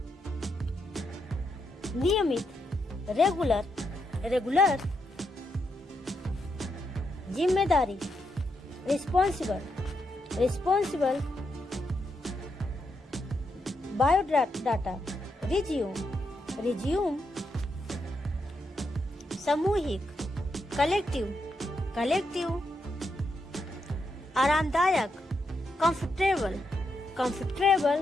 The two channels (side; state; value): both; normal; correlation 0.82